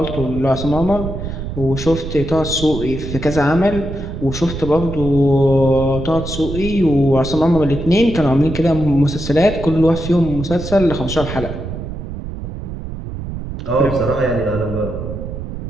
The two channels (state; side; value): noise; right; rumble, 7 dB below the sound